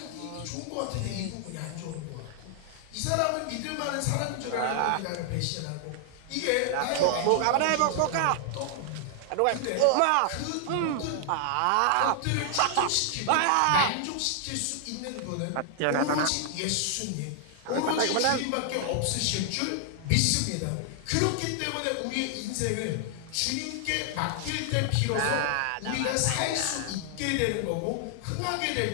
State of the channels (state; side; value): different; both; correlation 0.00